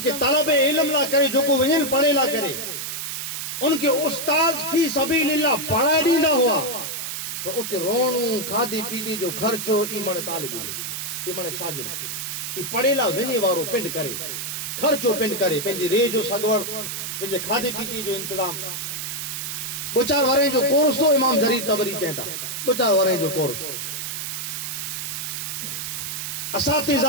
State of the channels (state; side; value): noise; right; hiss, 5 dB below the sound